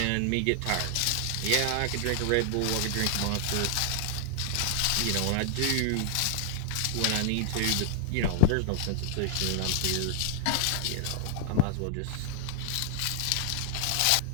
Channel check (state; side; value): different; both; correlation 0.00